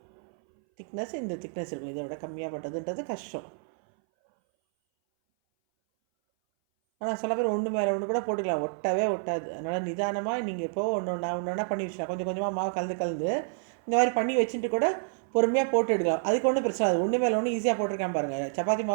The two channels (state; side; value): silent; left; 59 dB below the other